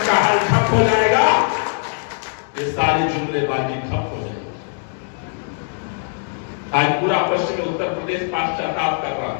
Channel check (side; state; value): right; silent; digital silence